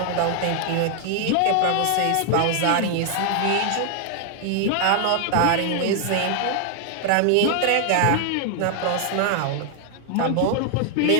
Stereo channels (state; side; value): different; both; correlation 0.00